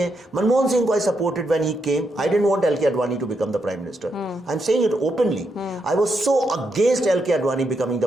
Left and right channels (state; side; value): normal; both; correlation 0.81